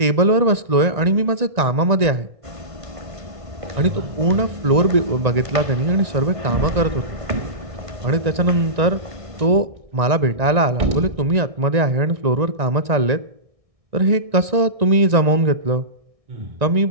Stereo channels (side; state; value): left; late; 1.9 ms